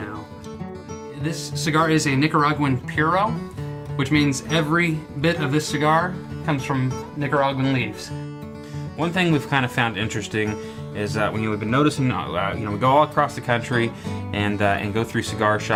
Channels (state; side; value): identical; both; correlation 1.00